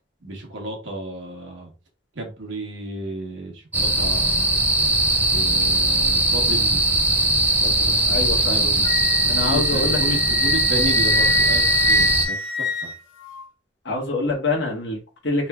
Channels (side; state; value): both; normal; correlation -0.13